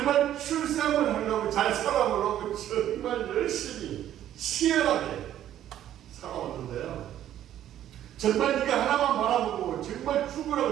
출세함을 하려고 잘 살아보려고 정말 열심히 치열하게 살아왔는데요. 정말 네가 하나만 바라보고 정말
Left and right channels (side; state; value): left; quieter; 11.6 dB